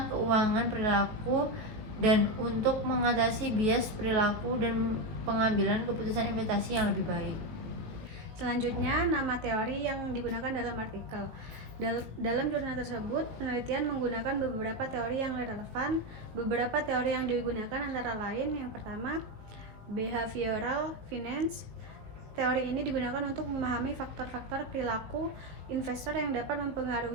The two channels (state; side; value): late; left; 18 ms